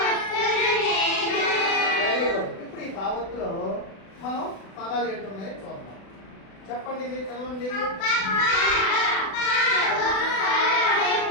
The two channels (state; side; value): late; right; 36 ms